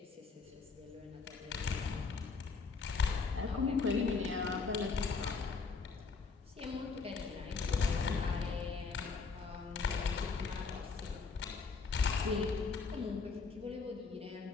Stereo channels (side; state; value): right; quieter; 4.7 dB